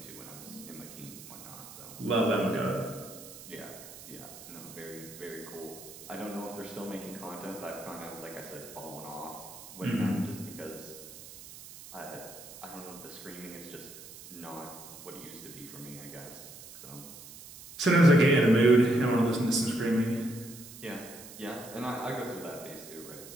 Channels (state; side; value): noise; right; hiss, 15 dB below the sound